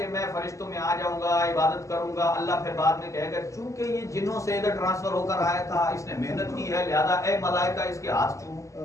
میں فرشتوں میں آ جاؤں گا عبادت کروں گا. اللہ پھر بعد میں کہے گا چونکہ یہ جنوں سے ادھر ٹرانسفر ہو کر آیا تھا اس نے محنت کی ہے لہذا اے ملائکہ اس کے ہاتھ چومو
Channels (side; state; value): right; late; 0.15 ms